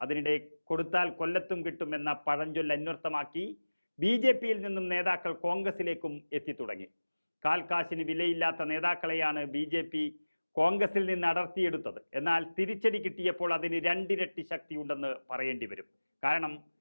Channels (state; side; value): inverted; both; correlation -1.00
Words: അതിനിടെ കൊടുത്താൽ കൊല്ലത്തും കിട്ടുമെന്ന പഴഞ്ചൊല്ല് അന്വർത്ഥമാക്കി BJPയിൽ നിന്നും നേതാക്കൾ കോൺഗ്രസിലേക്കും എത്തിത്തുടങ്ങി. കാൽക്കാശിന് വിലയില്ലാത്ത നേതാക്കളെയാണ് BJP കോൺഗ്രസിൽ നിന്ന് അടർത്തിയെടുത്തത്. എന്നാൽ തിരിച്ചടി കിട്ടിയപ്പോൾ അതിന് 2 ഇരട്ടി ശക്തിയുണ്ടെന്ന് പറയേണ്ടി വരും. കാരണം